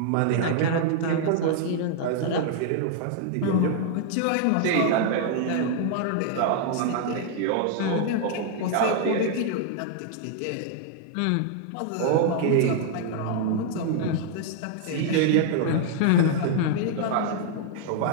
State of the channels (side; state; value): both; different; correlation 0.00